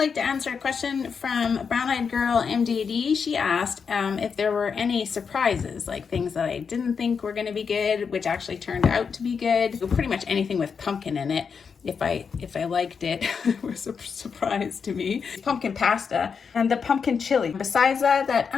like to answer a question from Brown Eyed Girl MDD. She asked if there were any surprises, like things that I didn't think were gonna be good, which actually turned out to be good. Pretty much anything with pumpkin in it. If I liked it, it was a surprise to me. Pumpkin pasta and the pumpkin chili. Besides that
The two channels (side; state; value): right; quieter; 6.0 dB